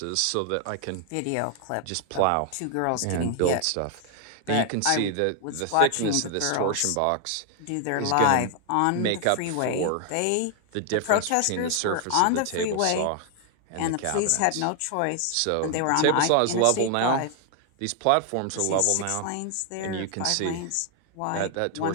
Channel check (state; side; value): different; both; correlation 0.00